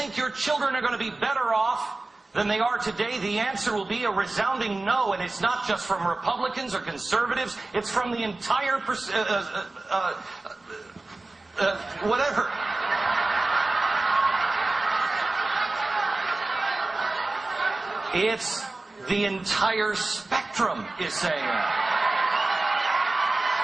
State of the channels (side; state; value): left; quieter; 3.1 dB